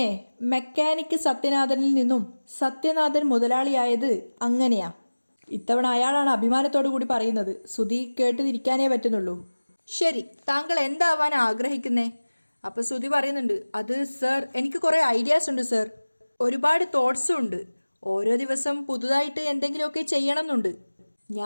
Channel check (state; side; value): inverted; both; correlation -1.00